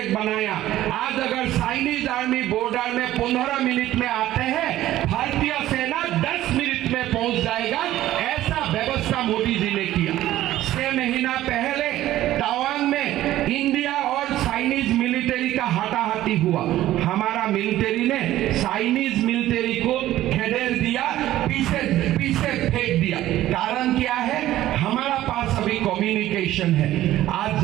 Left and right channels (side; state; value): left; quieter; 14.2 dB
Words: बनाया। आज अगर चाइनीज आर्मी बॉर्डर में 15 मिनट में आते हैं, भारतीय सेना 10 मिनट में पहुंच जाएगा। ऐसा व्यवस्था मोदी जी ने किया। 6 महीना पहले तवांग में इंडिया और चाइनीज मिलिट्री का हाथाहाथी हुआ। हमारा मिलिट्री ने चाइनीज मिलिट्री को खदेड़ दिया, पीछे फेंक दिया। कारण क्या है? हमारा पास अभी कम्युनिकेशन है। आज